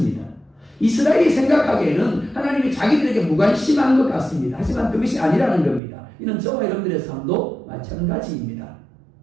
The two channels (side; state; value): left; drops out; at 5.8 s